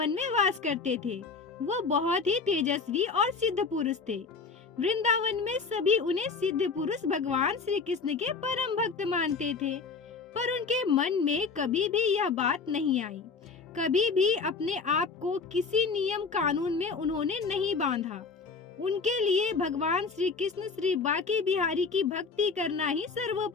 में वास करते थे। वो बहुत ही तेजस्वी और सिद्ध पुरुष थे। वृंदावन में सभी उन्हें सिद्ध पुरुष भगवान श्री कृष्ण के परम भक्त मानते थे। पर उनके मन में कभी भी यह बात नहीं आई। कभी भी अपने आप को किसी नियम कानून में उन्होंने नहीं बांधा। उनके लिए भगवान श्री कृष्ण श्री बांके बिहारी की भक्ति करना ही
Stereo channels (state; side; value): quieter; right; 4.8 dB